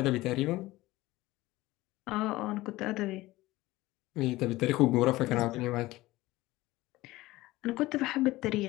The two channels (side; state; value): right; quieter; 18.4 dB